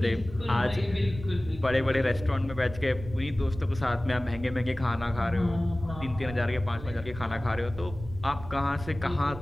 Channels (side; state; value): right; noise; rumble, 13 dB below the sound